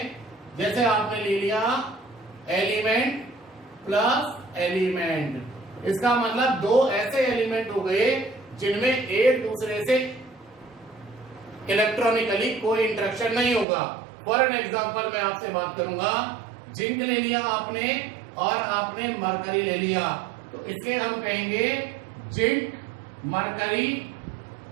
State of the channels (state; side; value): drops out; left; at 13.7 s